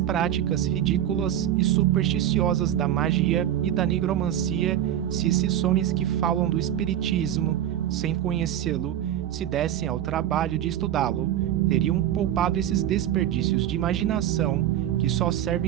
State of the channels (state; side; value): quieter; left; 11.3 dB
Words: ridículas e supersticiosas da magia e da nigromancia. Se esses homens que falam do espiritismo, sem conhecê-lo, se dessem ao trabalho de estudá-lo, teriam poupado esses desperdícios de imaginação que só